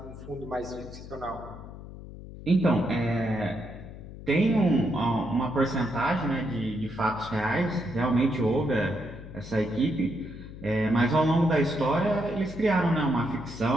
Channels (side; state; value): left; noise; hum, 14 dB below the sound